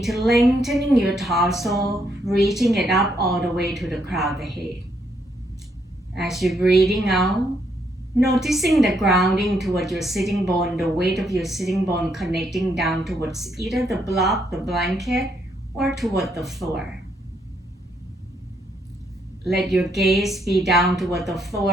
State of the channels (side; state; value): both; normal; correlation 0.74